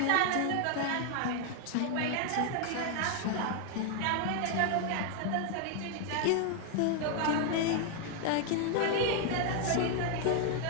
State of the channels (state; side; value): different; both; correlation 0.00